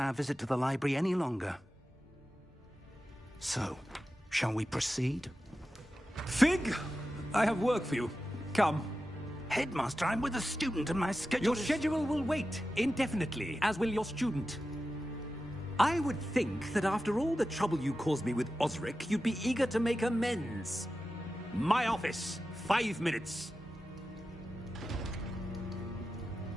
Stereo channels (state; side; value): normal; both; correlation 0.93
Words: visit to the library any longer. So, shall we proceed? Fig! I have work for you. Come. Headmaster, I'm with a student and my schedule Your schedule will wait indefinitely, as will your student. I would think that after all the trouble you caused me with Osric, you'd be eager to make amends. My office, 5 minutes.